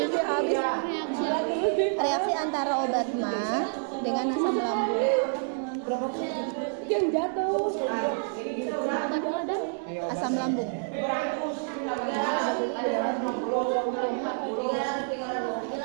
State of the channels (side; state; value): left; silent; 59 dB below the other